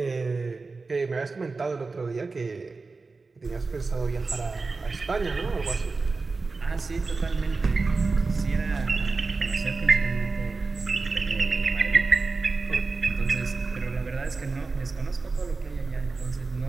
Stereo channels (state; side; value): quieter; left; 4.0 dB